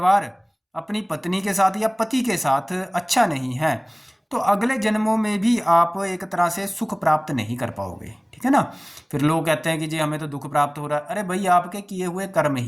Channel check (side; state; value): both; identical; correlation 1.00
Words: अपनी पत्नी के साथ या पति के साथ अच्छा नहीं है, तो अगले जन्मों में भी आप एक तरह से सुख प्राप्त नहीं कर पाओगे, ठीक है ना। फिर लोग कहते हैं कि जी हमें तो दुख प्राप्त हो रहा है। अरे भाई, आपके किए हुए कर्म